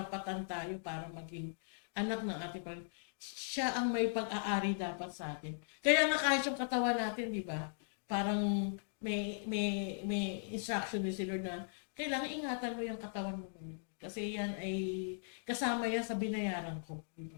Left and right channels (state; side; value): silent; right; digital silence